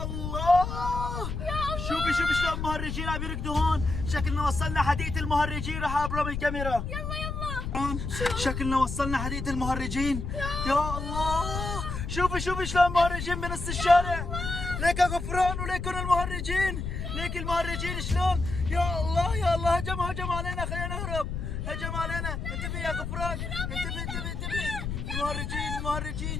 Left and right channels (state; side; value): noise; left; rumble, 4 dB below the sound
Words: الله شوفي شلون المهرجين عم يركضوا هون. شكلنا وصلنا حديقة المهرجين. راح ابرم الكاميرا. يلا شكلنا وصلنا حديقة المهرجين. يا الله شوفي شلون المهرجين بنص الشارع. ليك يا غفران وليكن المهرجين. ليك المهرجين شلون. يا الله هجم علينا. خلينا نهرب. هجم علينا. انتبه يا غفران. انتبه.